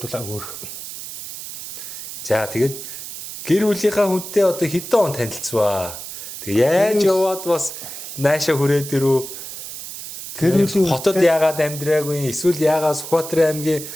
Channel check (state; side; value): noise; right; hiss, 10 dB below the sound